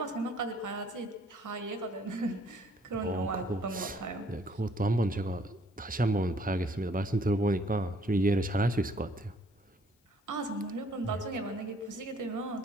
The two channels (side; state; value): both; normal; correlation 0.62